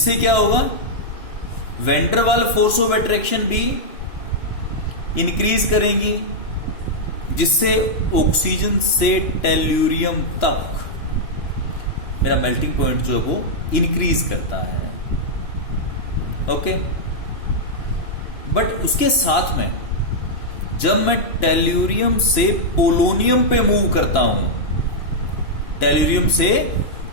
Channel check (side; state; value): right; late; 2.9 ms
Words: क्या होगा? Van der Waal force of attraction भी इंक्रीज करेंगी, जिससे ऑक्सीजन से टेल्यूरियम तक मेरा मेल्टिंग पॉइंट जो है वो इंक्रीज करता है। ओके, बट उसके साथ में जब मैं टेल्यूरियम से पोलोनियम पे मूव करता हूं, टेल्यूरियम से